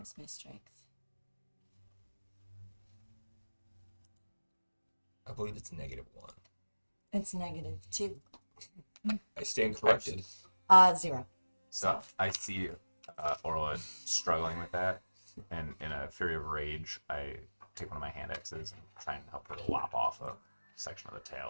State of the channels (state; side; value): inverted; both; correlation -1.00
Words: my strength? I believe it's -1. It's -2. I stand corrected. 0. So I see Orla struggling with that, and in a fury of rage, I take one of my hand axes and try and help her lop off a section of the tail